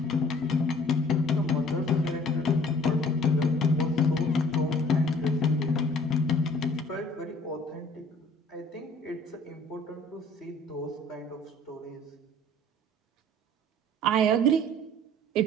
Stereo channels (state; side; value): normal; both; correlation 0.54